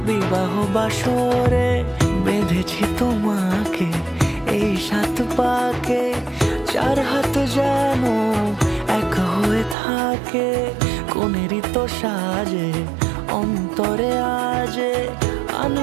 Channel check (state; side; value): drops out; left; at 9.8 s